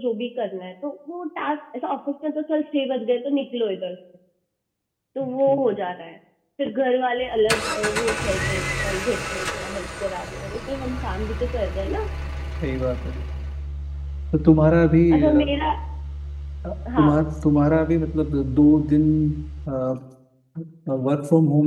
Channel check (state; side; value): identical; both; correlation 1.00